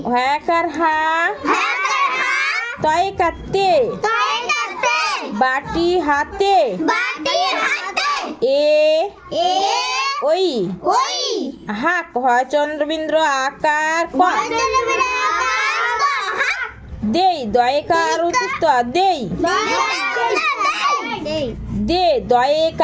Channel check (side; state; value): both; identical; correlation 1.00